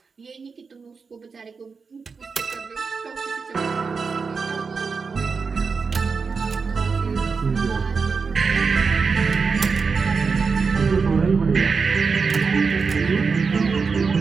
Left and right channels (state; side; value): quieter; left; 5.1 dB